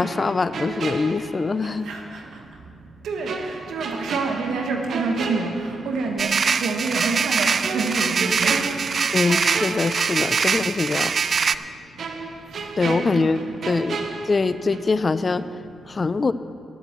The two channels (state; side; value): normal; both; correlation 0.84